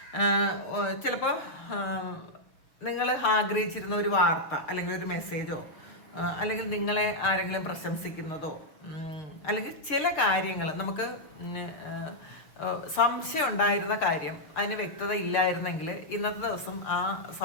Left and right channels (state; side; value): late; right; 6.3 ms